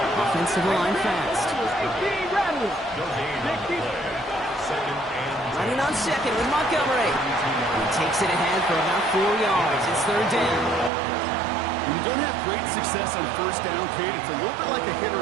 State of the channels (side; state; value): left; drops out; at 10.9 s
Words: Offensive line fast. Running on second with Montgomery. He takes it ahead for about 4 yards. It's 3rd down. When you don't have great success on 1st down, Kate, it's a little bit like a